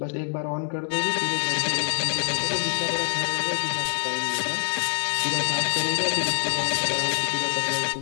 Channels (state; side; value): silent; right; 59 dB below the other